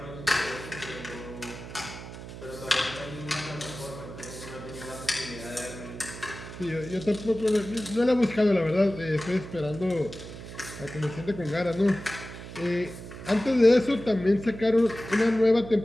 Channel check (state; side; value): noise; right; hum, 12 dB below the sound